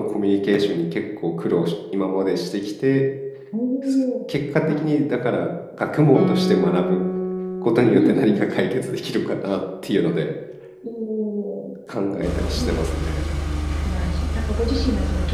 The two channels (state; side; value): identical; both; correlation 1.00